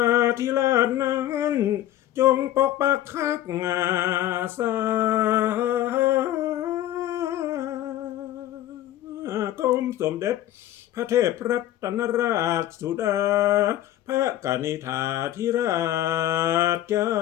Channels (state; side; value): quieter; right; 13.2 dB